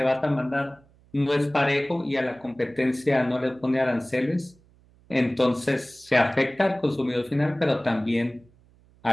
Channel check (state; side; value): noise; right; hum, 30 dB below the sound